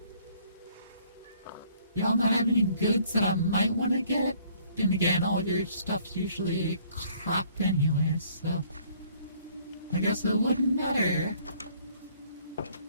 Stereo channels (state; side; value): inverted; both; correlation -0.60